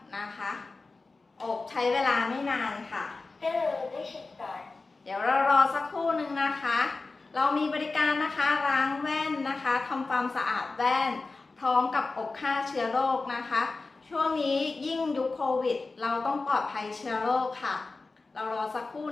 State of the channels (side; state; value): right; quieter; 3.7 dB